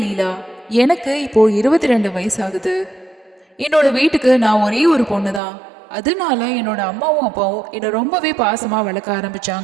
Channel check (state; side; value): drops out; left; at 5.4 s